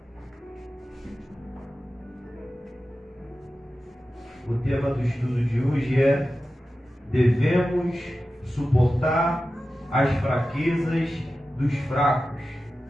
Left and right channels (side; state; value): both; normal; correlation 0.93